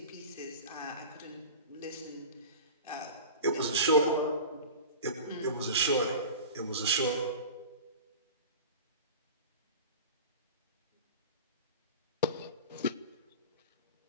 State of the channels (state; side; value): inverted; both; correlation -0.33